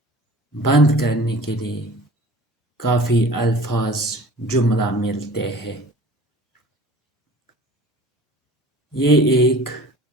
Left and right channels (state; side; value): normal; both; correlation 0.44